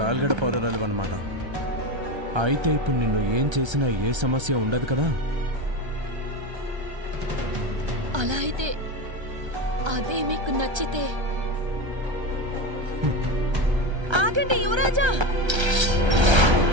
పౌరరాలు అన్నమాట. అయితే ఇప్పుడు నిన్ను ఏం చేసినా ఏ సమస్య ఉండదు కదా? అలా అయితే అదే మీకు నచ్చితే. ఆగండి యువరాజా.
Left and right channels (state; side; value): late; left; 1.3 ms